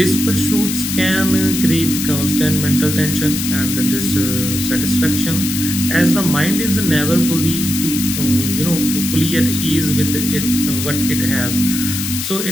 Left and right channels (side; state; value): left; noise; hiss, 4 dB below the sound